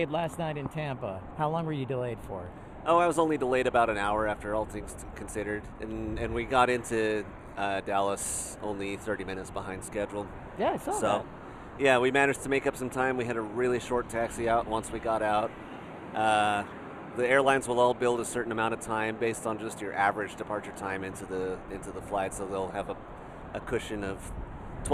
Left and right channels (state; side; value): identical; both; correlation 1.00